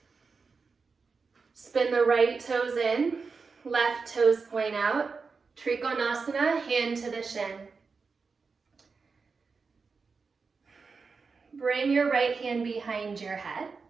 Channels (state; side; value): quieter; left; 4.8 dB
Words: Spin the right toes in, left toes point out. Trikonasana, hand to the shin. Bring your right hand behind your head.